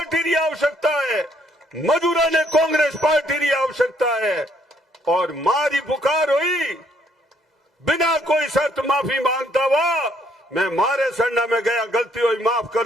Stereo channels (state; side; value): normal; both; correlation 0.68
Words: की आवश्यकता है, मजदूरों ने कांग्रेस पार्टी की आवश्यकता है। और मारी पुकार हुई बिना कोई शर्त माफी मांगता हुआ मैं मारे सड़ना में गया, गलती हुई माफ